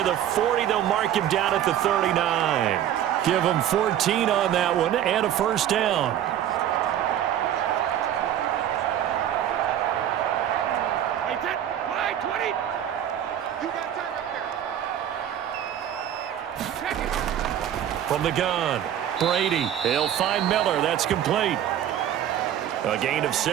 of the 40. They'll mark him down at the 39. Give him 14 on that one and a 1st down. From the gun, Brady. He'll find Miller. That's complete. A gain of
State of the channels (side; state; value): left; quieter; 10.8 dB